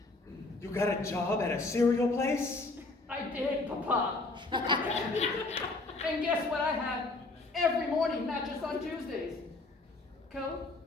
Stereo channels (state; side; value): quieter; right; 3.3 dB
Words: You got a job at a cereal place? I did, Papa. And guess what I have every morning, not just on Tuesdays? Go,